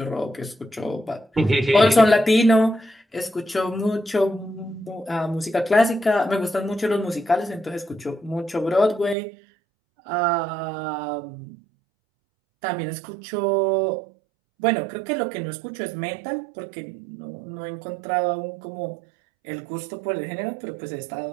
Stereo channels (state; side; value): drops out; left; at 9.2 s